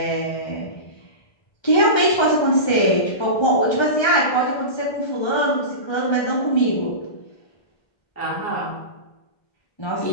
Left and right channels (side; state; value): right; late; 1.3 ms